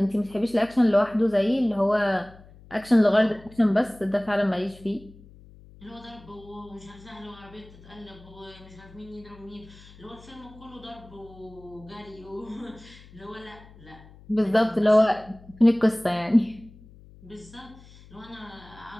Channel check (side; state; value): left; noise; hum, 22 dB below the sound